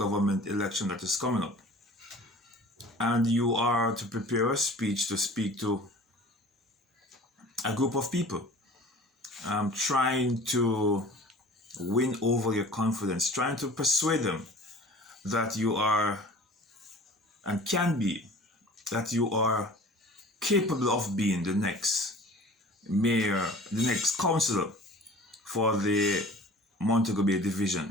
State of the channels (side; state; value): both; normal; correlation 0.44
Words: election that is coming up, and you are to prepare a speech to speak to a group of people, trying to win over your confidence, trying to persuade them that you are and can be, that you are capable of being the next mayor, the next councillor for the Montego Bay